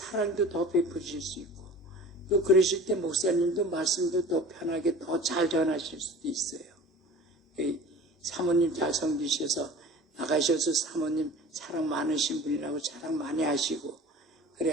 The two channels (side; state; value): both; normal; correlation 0.41